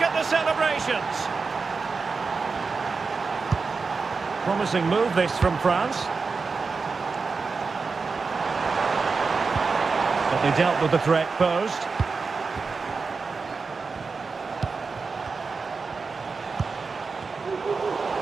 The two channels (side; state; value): left; quieter; 4.6 dB